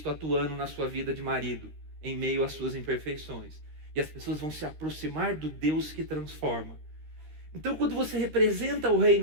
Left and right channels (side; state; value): left; late; 13 ms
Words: atuando na sua vida de marido, em meio às suas imperfeições. E as pessoas vão se aproximar do Deus que transforma. Então, quando você representa o